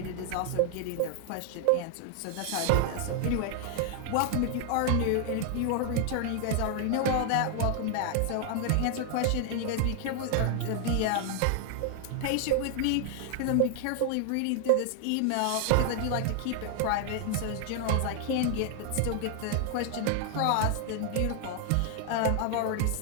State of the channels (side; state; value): both; different; correlation 0.00